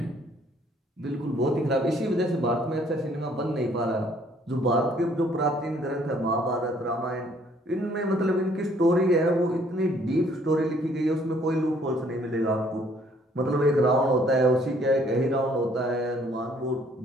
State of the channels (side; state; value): both; normal; correlation 0.62